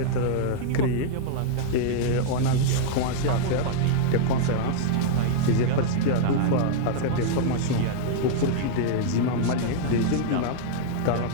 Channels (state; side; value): different; both; correlation -0.01